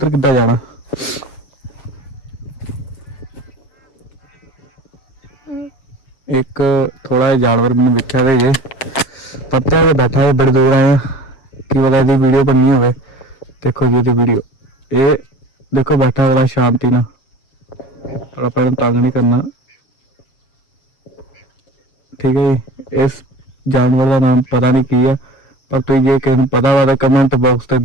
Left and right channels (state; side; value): late; right; 7.2 ms